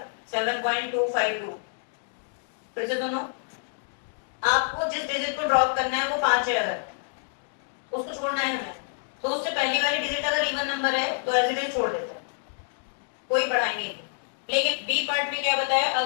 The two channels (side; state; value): right; silent; digital silence